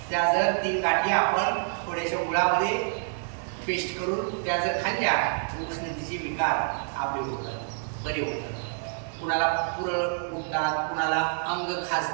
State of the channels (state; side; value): silent; left; digital silence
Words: त्या जर 3 गाठी आपण थोड्याशा गुळामध्ये पेस्ट करून त्या जर खाल्ल्या, उष्णतेचे विकार आपले होतात, बरे होतात। कुणाला पुरळ उठतात, कुणाला अंग